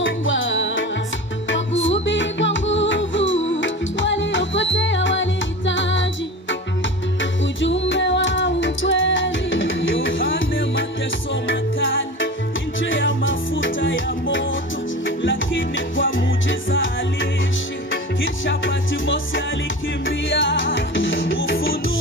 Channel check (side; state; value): both; normal; correlation 0.32